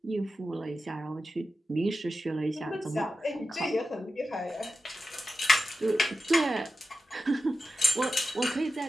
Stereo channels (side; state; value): both; normal; correlation 0.92